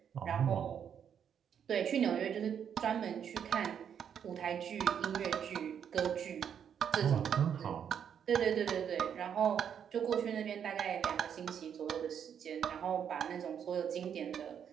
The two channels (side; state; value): left; quieter; 8.3 dB